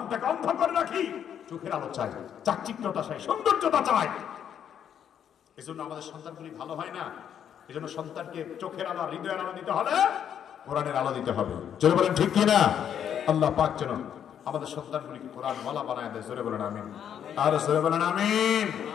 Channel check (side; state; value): right; quieter; 9.0 dB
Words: অন্ধ করে রাখি, চোখের আলো চাই, চাকচিক্যতা চাই, সৌন্দর্যতা চাই। এই জন্য আমাদের সন্তানগুলি ভালো হয় না। এই জন্য সন্তানকে চোখের আলো, হৃদয়ের আলো দিতে হলে কোরআনের আলো দিতে হবে। জোরে বলেন ঠিক কিনা? আল্লাহ পাক যেন আমাদের সন্তানগুলিকে কোরআনওয়ালা বানায় দেয়। জোরে বলেন আমিন। আর জোরে বলেন আমিন।